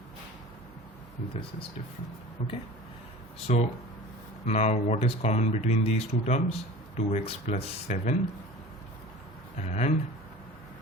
This is different. Okay. So now what is common between these two terms? 2x plus 7 and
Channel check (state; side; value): normal; both; correlation 0.39